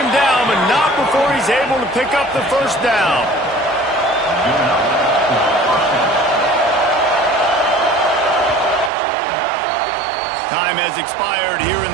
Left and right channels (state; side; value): drops out; left; at 8.9 s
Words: down, but not before he's able to pick up the first down. Time has expired here in